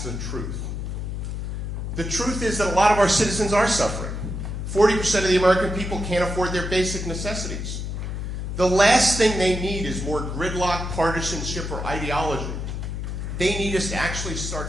the truth. The truth is that a lot of our citizens are suffering. 40% of the American people can't afford their basic necessities. The last thing they need is more gridlock, partisanship, or ideology. They need us to actually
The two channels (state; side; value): noise; left; hum, 4 dB below the sound